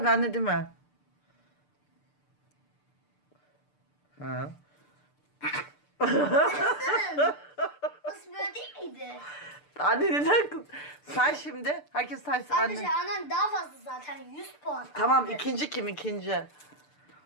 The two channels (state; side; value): late; right; 6.8 ms